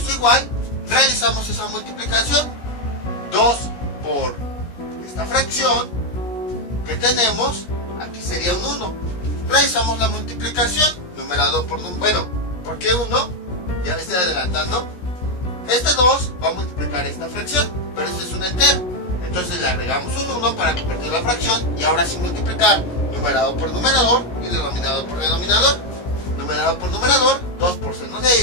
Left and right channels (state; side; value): late; right; 16 ms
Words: igual. Realizamos esa multiplicación. 2 por esta fracción que tenemos, aquí sería un 1. Realizamos la multiplicación. Numerador por número. Bueno, ¿por qué 1? Ya me estoy adelantando. Este 2 va a multiplicar esta fracción, pero este es un entero. Entonces le agregamos un 1 para convertir la fracción y ahora sí multiplicar numerador por numerador y denominador por denominador. Numerador por numerador, 2 por seno de